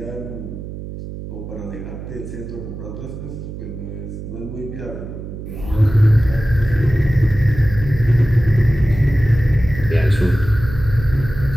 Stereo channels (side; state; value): right; noise; hum, 10 dB below the sound